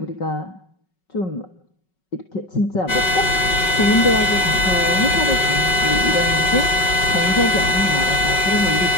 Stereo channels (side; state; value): right; late; 5.4 ms